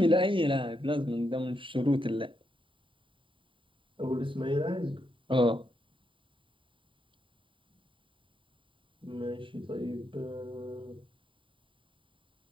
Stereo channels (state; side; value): late; left; 0.25 ms